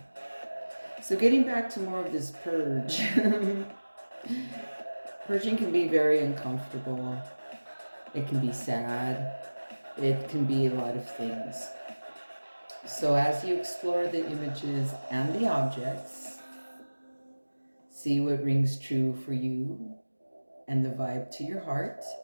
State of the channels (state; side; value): inverted; both; correlation -1.00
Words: So getting back to more of this purge. Purging can be very uncomfortable. It can be sad. It can be a lot of things. So as you explore the images and the objects, see what rings true for you and the vibe to your heart.